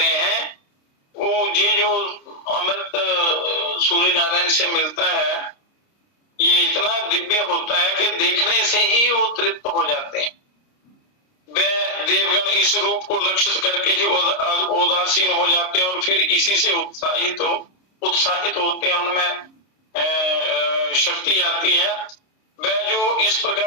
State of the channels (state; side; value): late; right; 30 ms